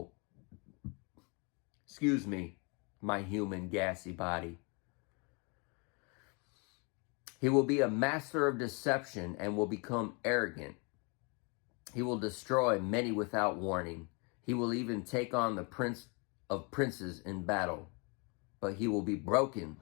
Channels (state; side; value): quieter; right; 32.5 dB